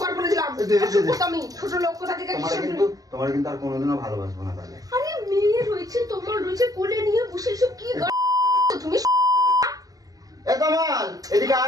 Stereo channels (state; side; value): late; left; 0.17 ms